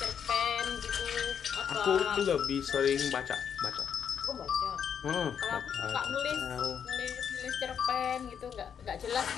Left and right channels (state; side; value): quieter; right; 7.8 dB